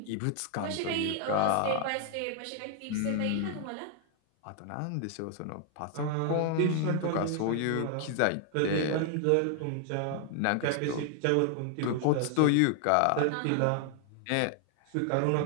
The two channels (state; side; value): different; both; correlation 0.00